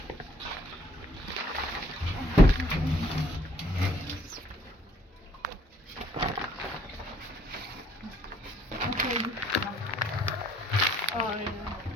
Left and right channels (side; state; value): both; normal; correlation 0.63